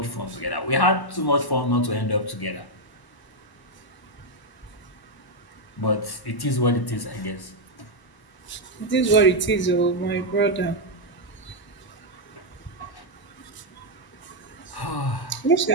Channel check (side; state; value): right; late; 1.0 ms